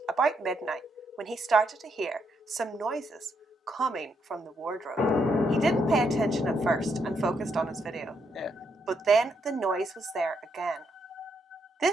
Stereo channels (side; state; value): both; normal; correlation 0.77